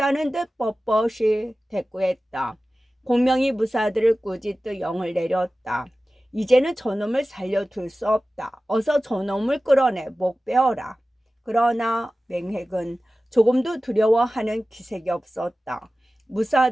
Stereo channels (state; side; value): normal; both; correlation 0.96